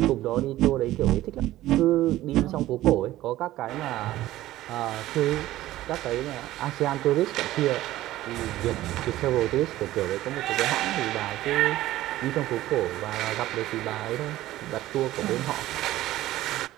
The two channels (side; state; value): left; quieter; 15.4 dB